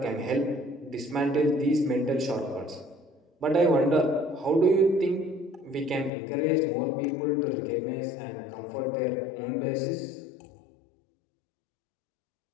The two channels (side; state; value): right; drops out; at 6.1 s